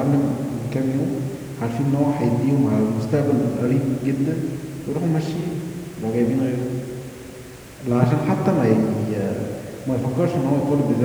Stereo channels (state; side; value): identical; both; correlation 1.00